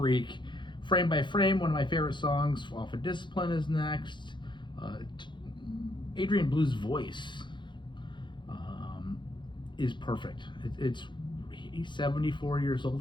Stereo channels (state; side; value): late; right; 0.23 ms